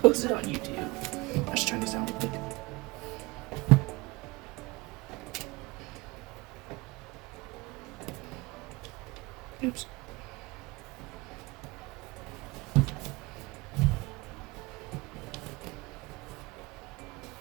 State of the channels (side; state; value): left; quieter; 23.5 dB